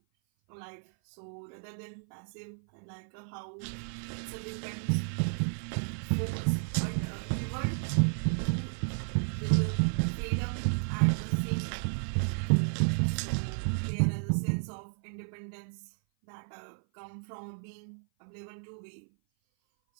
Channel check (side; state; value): left; silent; 56 dB below the other